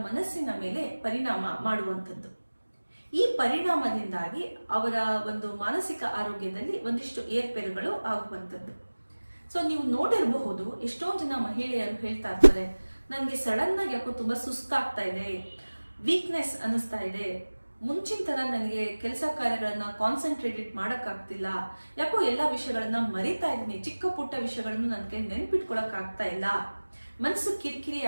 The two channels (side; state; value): both; inverted; correlation -1.00